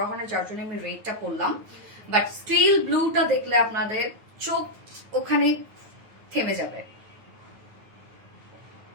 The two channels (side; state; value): left; late; 9.4 ms